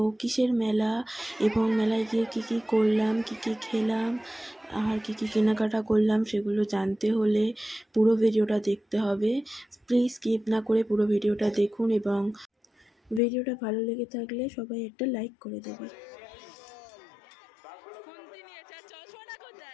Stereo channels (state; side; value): drops out; right; at 13.2 s